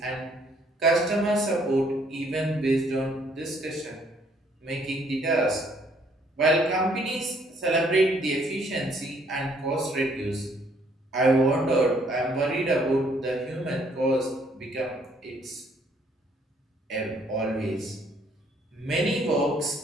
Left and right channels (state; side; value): normal; both; correlation 0.65